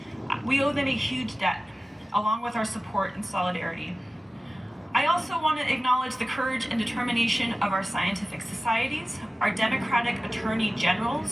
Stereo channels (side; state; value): both; normal; correlation 0.97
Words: We owe them a huge debt, along with our support and solidarity. I also want to acknowledge the courage and determination of our scientific societies, our Democratic attorney